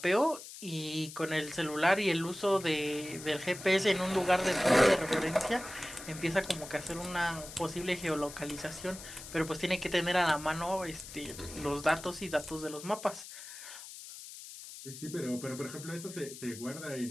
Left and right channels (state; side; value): noise; left; hiss, 13 dB below the sound